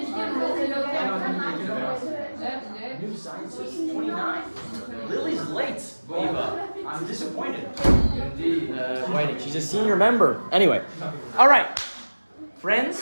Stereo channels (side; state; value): both; inverted; correlation -1.00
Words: New scientist, 29. Lily's late, Eva. I'm disappointed. Indeed. Waiting. She's a senior member. Anyway. All right.